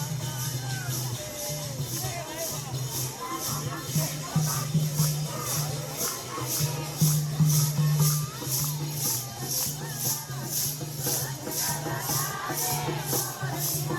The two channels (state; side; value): identical; both; correlation 1.00